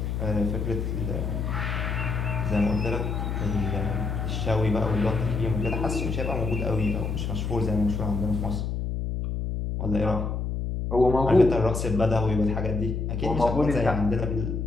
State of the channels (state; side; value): noise; left; hum, 2 dB below the sound